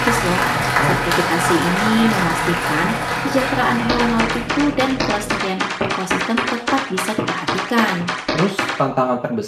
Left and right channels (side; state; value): both; identical; correlation 1.00